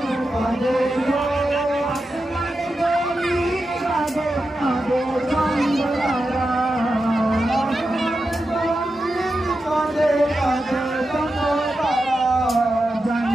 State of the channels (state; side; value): normal; both; correlation 0.90